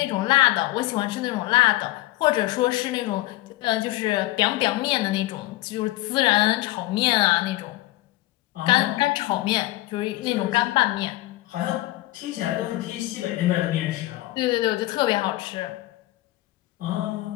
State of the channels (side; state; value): right; quieter; 17.9 dB